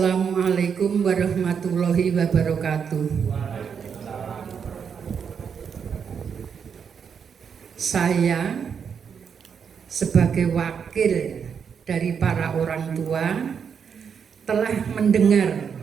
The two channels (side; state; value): left; quieter; 6.9 dB